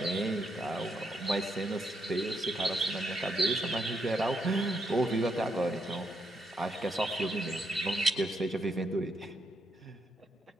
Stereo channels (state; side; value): normal; both; correlation 0.78